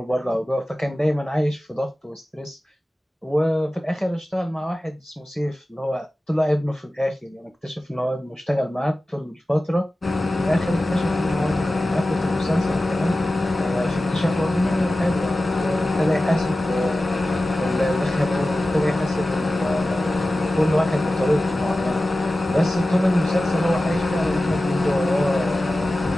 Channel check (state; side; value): normal; both; correlation 0.95